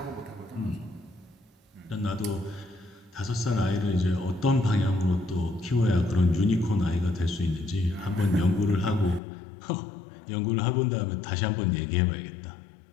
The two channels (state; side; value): drops out; right; at 9.2 s